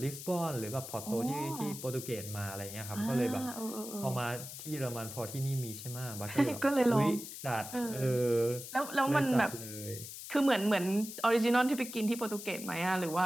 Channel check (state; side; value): noise; left; hiss, 10 dB below the sound